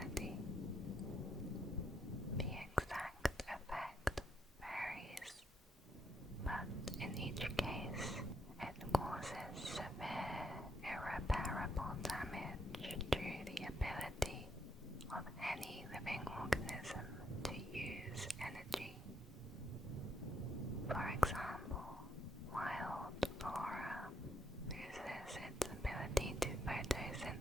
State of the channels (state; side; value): normal; both; correlation 0.76